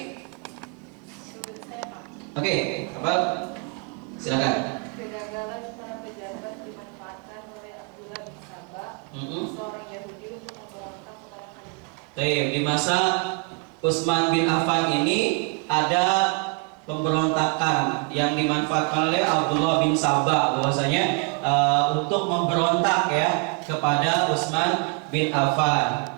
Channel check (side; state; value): left; quieter; 33.7 dB